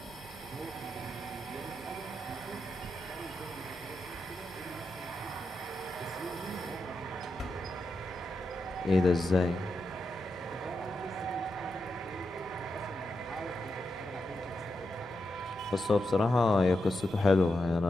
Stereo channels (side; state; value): both; normal; correlation 0.87